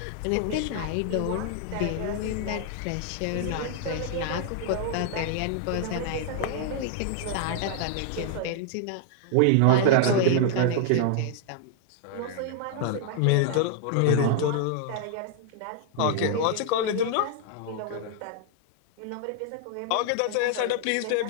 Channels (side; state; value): both; different; correlation 0.00